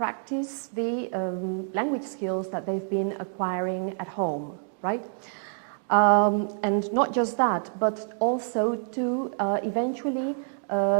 the language skills that they've been acquiring at home, right? And not just that, but also to eventually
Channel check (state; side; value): silent; left; 60 dB below the other